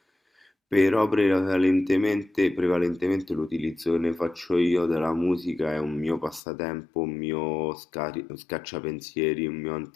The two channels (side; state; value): right; drops out; at 6.4 s